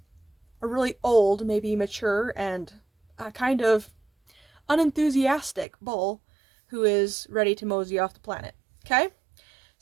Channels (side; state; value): left; drops out; at 5.7 s